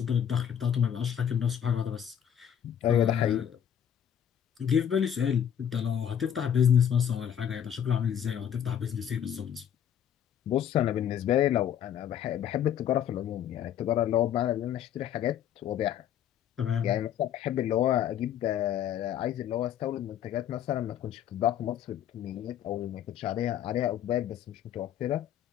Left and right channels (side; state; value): right; quieter; 9.5 dB